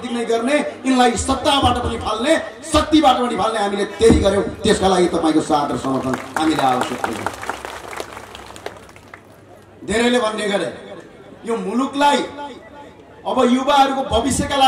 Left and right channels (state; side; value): identical; both; correlation 1.00